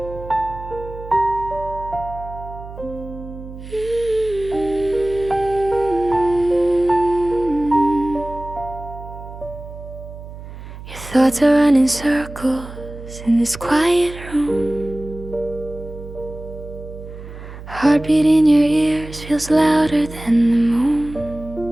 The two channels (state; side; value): noise; right; hum, 13 dB below the sound